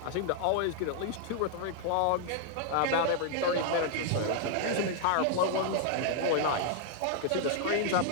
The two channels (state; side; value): different; both; correlation -0.01